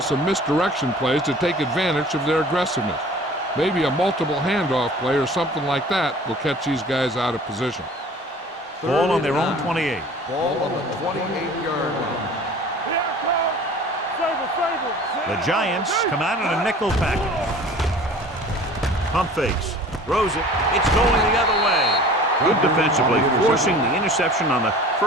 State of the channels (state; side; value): normal; both; correlation 0.45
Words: some misdirection plays to take advantage of their aggressiveness. Maybe a multiple handoff play or something like that will catch these guys out of position. Ball on their own 28. Ball on the 28-yard line. The Giants come out in a nickel package. Pump fakes. Throws it. It's going the other way. Good defensively, forcing the interception on the